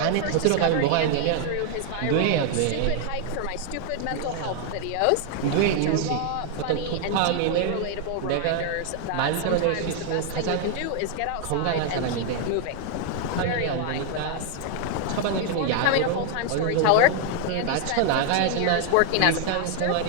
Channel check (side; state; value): both; different; correlation 0.00